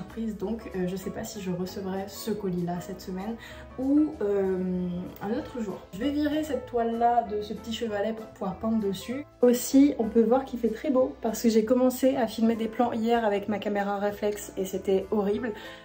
donc je sais pas si je recevrai ce colis là cette semaine ou un autre jour. Je vais virer cette toile là de ce petit chevalet pour pouvoir peindre dessus. Aussi on peut voir qu'il fait très beau parce que j'ai commencé à filmer des plans hier avec ma caméra réflexe et c'était horrible,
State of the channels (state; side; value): identical; both; correlation 1.00